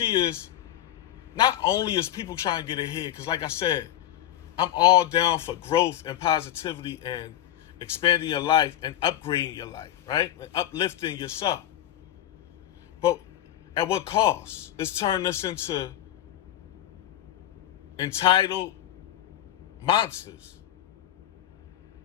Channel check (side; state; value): right; quieter; 12.5 dB